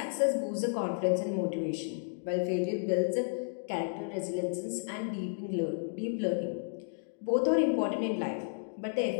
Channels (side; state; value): right; silent; digital silence